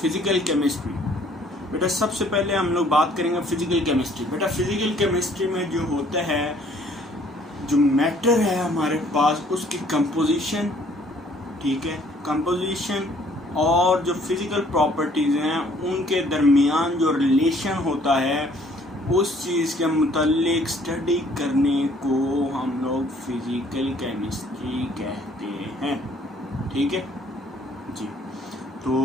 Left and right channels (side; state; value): both; normal; correlation 0.60